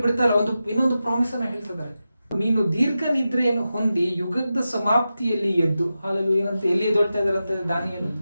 ಬಿಡ್ತಾ ಇಲ್ಲ, ಇನ್ನೊಂದು ಪ್ರಾಮಿಸ್ ಅನ್ನ ಹೇಳ್ತಿದ್ದಾರೆ. ನೀನು ದೀರ್ಘ ನಿದ್ರೆಯನ್ನು ಹೊಂದಿ ಯುಗದ ಸಮಾಪ್ತಿಯಲ್ಲಿ ಎದ್ದು. ಹಾಲೆಲೂಯ. ಏನಂತ ಎಲ್ಲಿ ಎದ್ದೊಳ್ತಾ ಇದಾರಂತೆ ದಾನಿಯೇಲ?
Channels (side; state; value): both; inverted; correlation -0.92